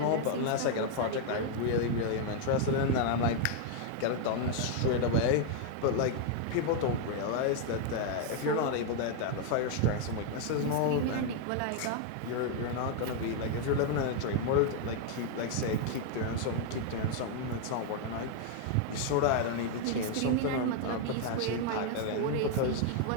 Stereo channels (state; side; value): different; both; correlation 0.00